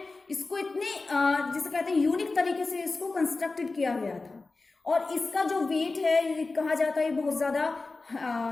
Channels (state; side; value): quieter; right; 3.6 dB